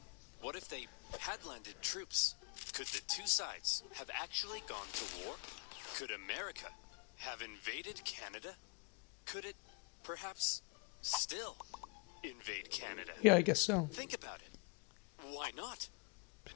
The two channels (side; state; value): right; quieter; 32.5 dB